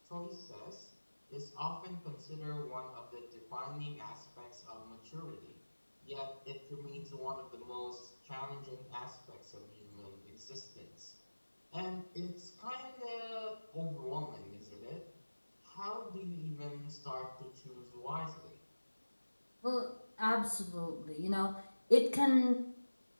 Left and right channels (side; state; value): both; inverted; correlation -1.00